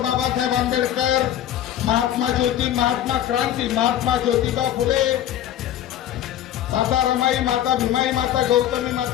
आंबेडकर, महात्मा ज्योती, महात्मा क्रांती, महात्मा ज्योतिबा फुले, माता रमाई, माता भीमाई, माता गौतमी,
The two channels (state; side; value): quieter; right; 11.7 dB